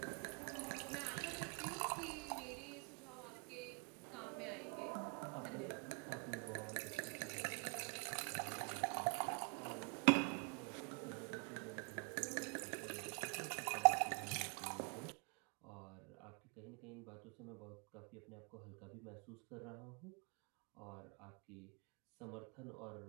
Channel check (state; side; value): quieter; left; 37.5 dB